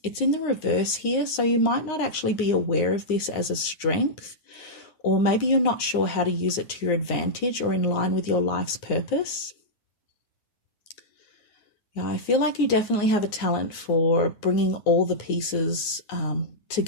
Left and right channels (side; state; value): right; late; 9.7 ms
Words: It's in the reverse here, so you might not actually be aware of this as a strength, or maybe you're not sure how to use it to your advantage or in line with your life's purpose. Yeah, I feel like you definitely have a talent for bringing all the pieces